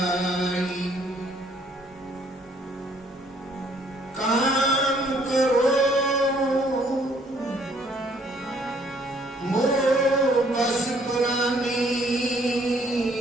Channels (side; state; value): both; normal; correlation 0.63